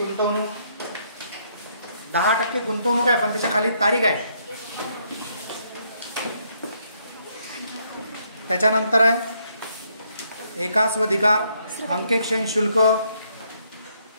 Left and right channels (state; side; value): inverted; both; correlation -0.72